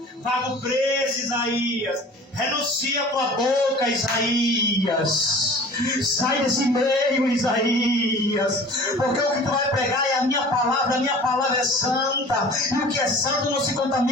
Paga o preço, Isaías. Renuncia a tua boca, Isaías. Sai desse meio, Isaías. Porque o que tu vai pregar é a minha palavra é santa. E o que é santo não se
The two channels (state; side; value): normal; both; correlation 0.43